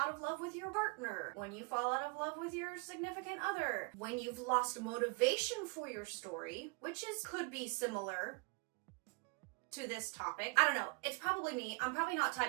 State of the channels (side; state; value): left; quieter; 31.4 dB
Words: of love with your partner, when you fall out of love with your significant other, when you've lost motivation for your story, which could be similar to this topic. I don't know. It's probably me. I'm probably not